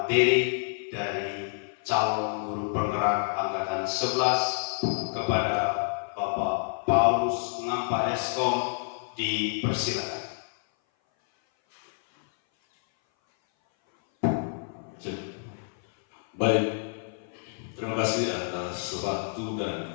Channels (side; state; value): right; silent; 57 dB below the other